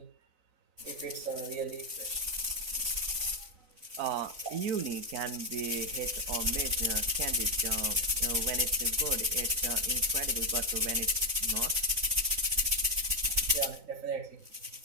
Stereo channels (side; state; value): left; late; 3.9 ms